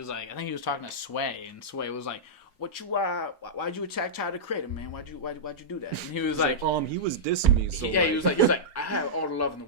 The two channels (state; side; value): normal; both; correlation -0.12